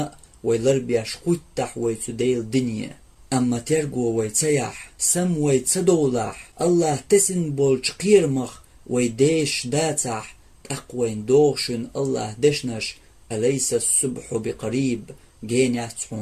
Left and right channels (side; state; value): both; identical; correlation 1.00